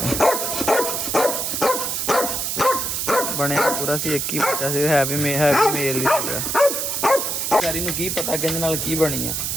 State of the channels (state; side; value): noise; right; hiss, 1 dB below the sound